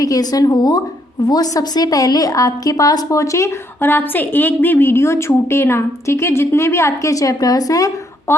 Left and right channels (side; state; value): both; normal; correlation 0.72